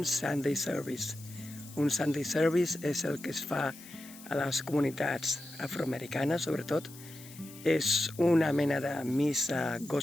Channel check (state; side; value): noise; left; hiss, 18 dB below the sound